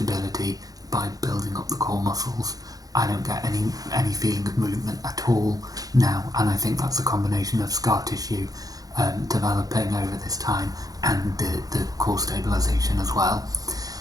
by building up the core muscles. I don't get any feeling of movement at all now, and I think that's a combination of scar tissue developing over this time and the core stabilisation as well.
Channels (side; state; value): left; late; 0.18 ms